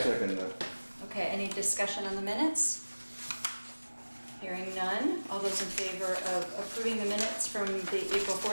Okay, any discussion on the minutes? Hearing none. All those in favor of approving the minutes from the April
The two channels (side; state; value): both; inverted; correlation -1.00